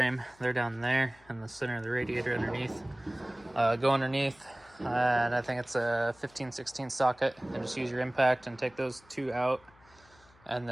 They're down there in the center of the radiator underneath. Go underneath, and I think it's a 15/16 socket, and just use your impact and take those 2 out. And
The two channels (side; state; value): left; noise; hum, 28 dB below the sound